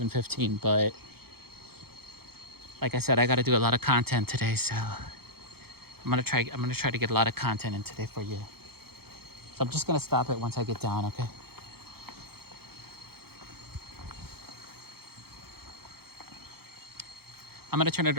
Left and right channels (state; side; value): late; left; 0.96 ms